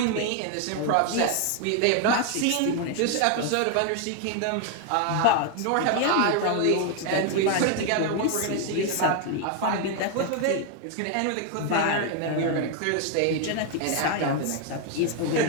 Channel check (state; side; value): different; both; correlation 0.01